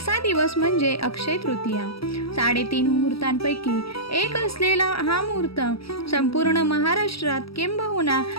दिवस म्हणजे अक्षय तृतीया. 3.5 मुहूर्तांपैकी एक असलेला हा मुहूर्त संपूर्ण महाराष्ट्रात किंबहुना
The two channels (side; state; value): right; late; 0.76 ms